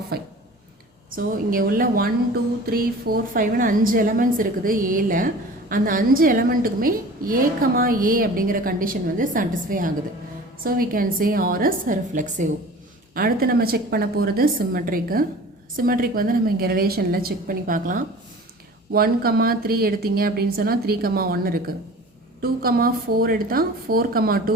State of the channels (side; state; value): both; normal; correlation 0.41